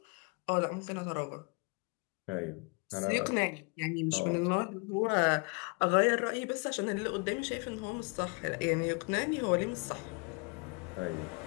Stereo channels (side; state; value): right; quieter; 31.0 dB